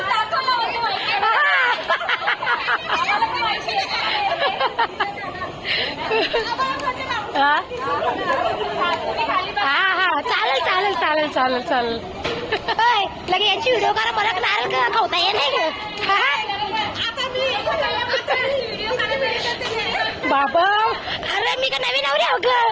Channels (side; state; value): both; identical; correlation 1.00